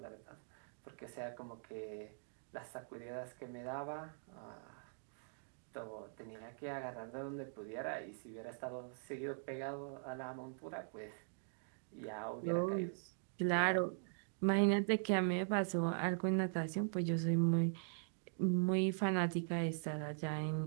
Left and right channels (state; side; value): silent; left; digital silence